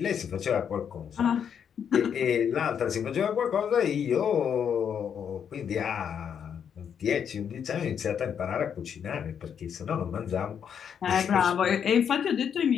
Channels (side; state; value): right; quieter; 7.9 dB